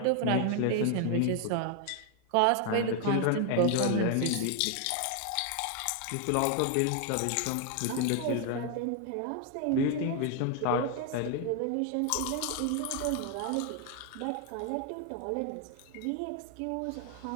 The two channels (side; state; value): both; different; correlation 0.00